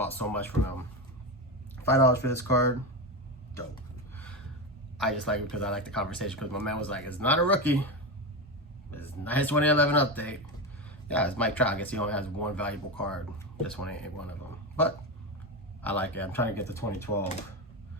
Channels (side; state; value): both; normal; correlation 0.17